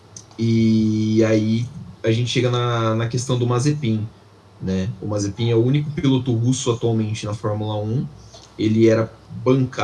E aí a gente chega na questão do Mazepin, né? O Mazepin é o único piloto russo atualmente na Fórmula 1. Ele era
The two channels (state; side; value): identical; both; correlation 1.00